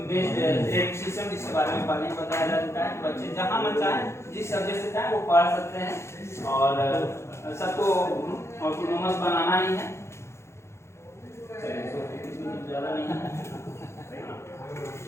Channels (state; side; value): late; right; 0.13 ms